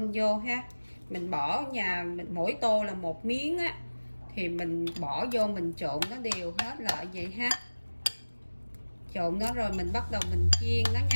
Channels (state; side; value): inverted; both; correlation -1.00